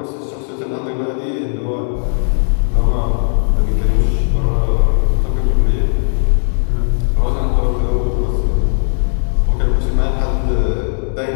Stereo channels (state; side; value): silent; right; 67 dB below the other